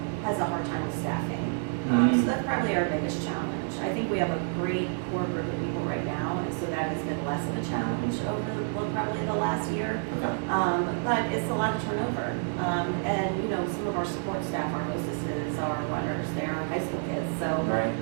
has a hard time with staffing. So that's probably our biggest challenge. I think we have a great core group of people right now, and so that has been less of a challenge over probably the last year. Okay. But it's a lot of turnover. And some of our support staff, our hostesses, our runners, they're high school kids, so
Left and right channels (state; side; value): silent; left; 55 dB below the other